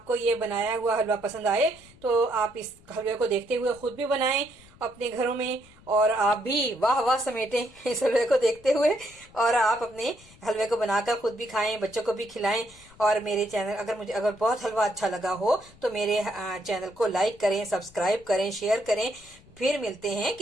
ये बनाया हुआ हलवा पसंद आए तो आप इस हलवे को देखते हुए खुद भी बनाएं अपने घरों में और आप भी वाह वाह समेटें इस हलवे को देखते हुए और आप अपने हलवे को बनाकर खुद भी खाएं, बच्चों को भी खिलाएं। और मेरे चैनल अगर बहुत हलवा अच्छा लगा हो तो मेरे चैनल को लाइक करें, सब्सक्राइब करें, शेयर करें। फिर मिलते हैं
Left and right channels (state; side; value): noise; left; rumble, 25 dB below the sound